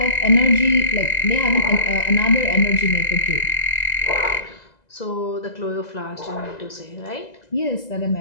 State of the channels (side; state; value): right; late; 2.0 ms